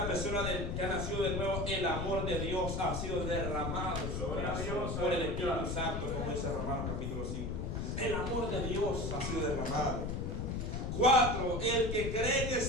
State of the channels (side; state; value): left; noise; rumble, 2 dB below the sound